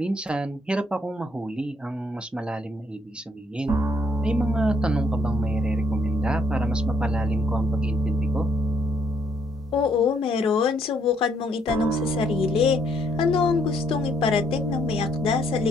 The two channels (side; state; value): both; normal; correlation 0.69